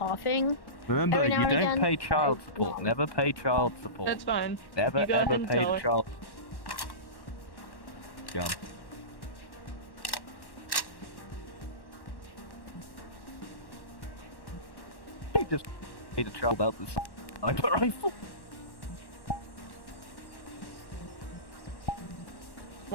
Remember, every you now and don't again. pay child support. No. Never pay child support. That's fine. Never You go ever ahead and pay tell the her. child. Gun. He just made a child out this sniper rifle.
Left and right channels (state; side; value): late; right; 1.1 ms